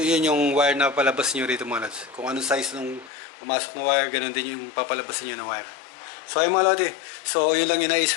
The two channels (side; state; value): right; drops out; at 3.1 s